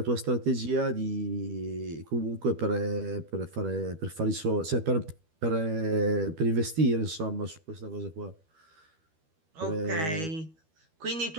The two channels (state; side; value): late; left; 12 ms